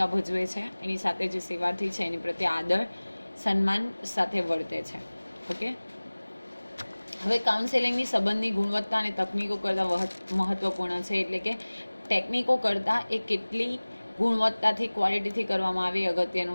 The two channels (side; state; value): both; inverted; correlation -1.00